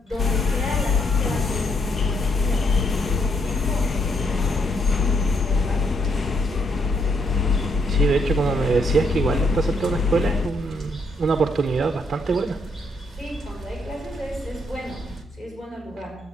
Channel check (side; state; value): both; normal; correlation 0.73